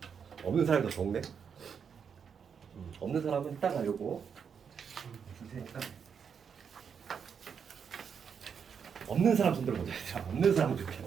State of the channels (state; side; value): quieter; left; 6.9 dB